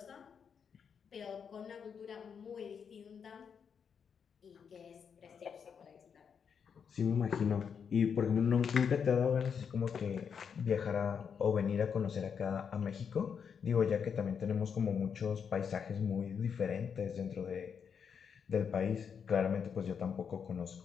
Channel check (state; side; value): quieter; right; 6.9 dB